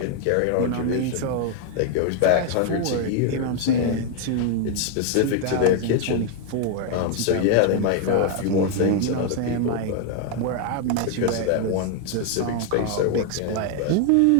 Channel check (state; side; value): different; both; correlation 0.00